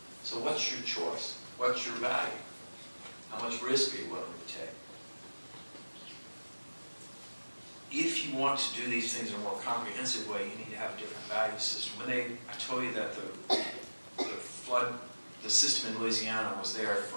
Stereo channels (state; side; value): inverted; both; correlation -1.00